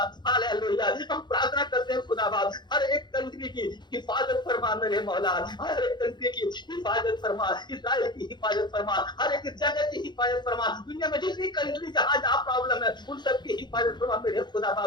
हालेलुया। हम प्रार्थना करते हैं खुदा बाप, हर एक कंट्री की हिफाजत फरमा मेरे मौला, हर एक कंट्री की हिफाजत फरमा, इजराइल की हिफाजत फरमा, हर एक जगह की हिफाजत फरमा, दुनिया में जितनी कंट्री जहां जहां प्रॉब्लम है उन सबकी हिफाजत फरमा मेरे खुदा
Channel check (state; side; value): late; right; 0.21 ms